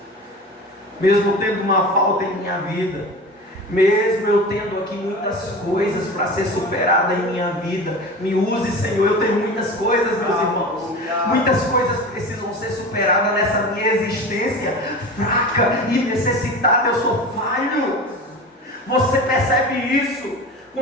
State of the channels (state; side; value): normal; both; correlation 0.32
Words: Mesmo tendo uma falta em minha vida, mesmo eu tendo aqui muitas coisas para ser superada em minha vida, me use, Senhor. Eu tenho muitas coisas, meus irmãos, muitas coisas precisam ser superadas nessa minha existência fraca e necessitada. Eu sou falho. Você percebe isso?